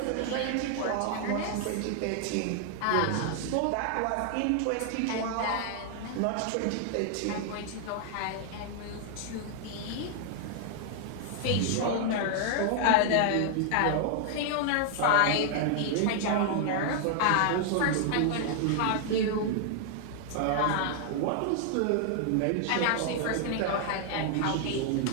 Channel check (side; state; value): both; different; correlation 0.00